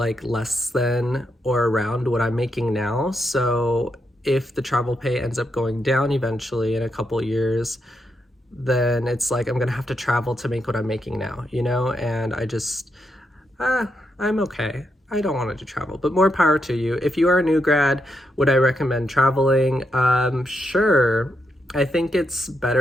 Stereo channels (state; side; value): normal; both; correlation 0.82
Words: less than or around what I'm making now. So if the travel pay ends up going down eventually in a couple years, then it's like I'm gonna have to travel to make what I'm making now, you know? And I just, I'm okay. I don't want to travel, but more power to you. If you are a new grad, would I recommend traveling? Sure. I think it's